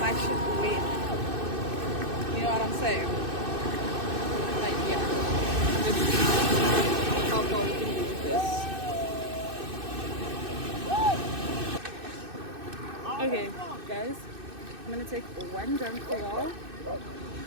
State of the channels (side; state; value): left; late; 2.6 ms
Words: shit wet. You know what I'm saying? Like, yeah. Let's see how far we can do with this. Okay, guys. I'm gonna take one jump for y'all.